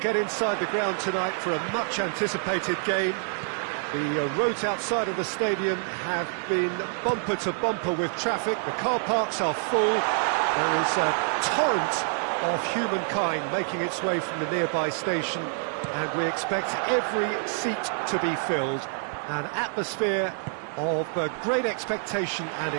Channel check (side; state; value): left; silent; 55 dB below the other